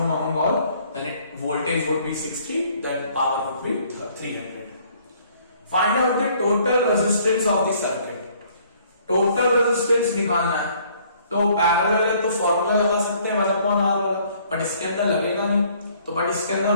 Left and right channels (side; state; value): both; inverted; correlation -0.61